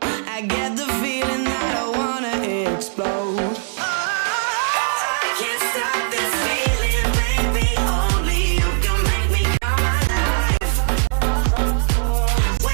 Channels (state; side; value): silent; left; digital silence